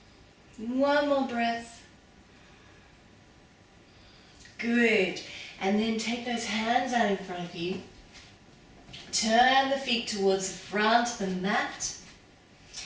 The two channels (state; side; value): identical; both; correlation 1.00